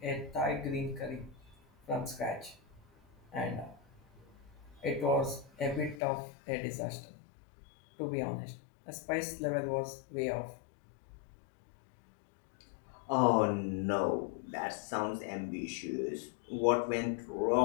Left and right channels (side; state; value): right; drops out; at 6.0 s